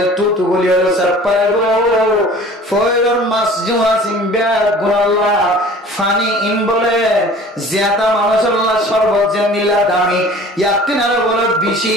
তুতু গুলি হলো সব পাইব ফইরর মাছ জুয়া সিম্বা গুনাল্লাহ ফানি ইন বলে জিয়াতা মানুষের শরবত যে নিলা দামি ইয়াতিনারে বলে বেশি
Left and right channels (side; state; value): both; normal; correlation 0.46